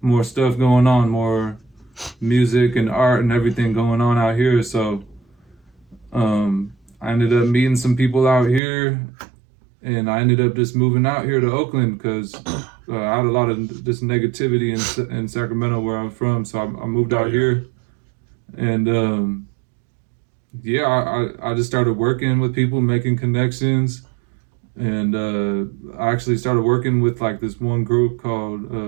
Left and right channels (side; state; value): left; drops out; at 8.6 s